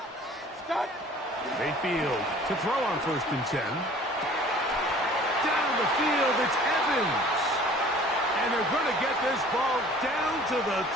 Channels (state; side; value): normal; both; correlation 0.49